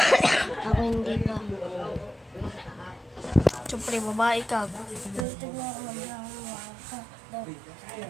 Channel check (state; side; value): drops out; left; at 5.2 s